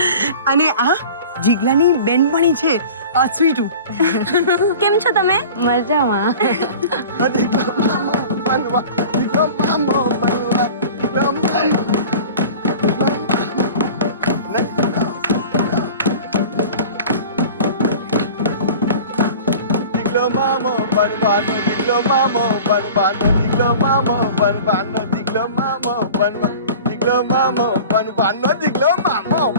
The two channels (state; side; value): inverted; both; correlation -0.40